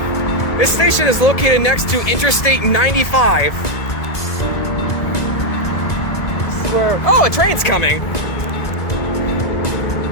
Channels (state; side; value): late; right; 1.9 ms